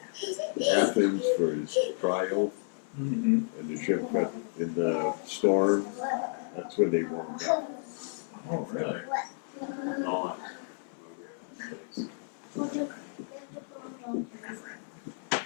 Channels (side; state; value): right; silent; 57 dB below the other